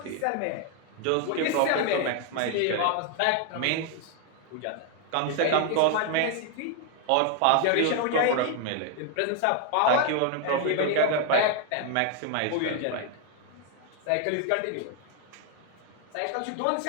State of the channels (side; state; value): both; different; correlation 0.00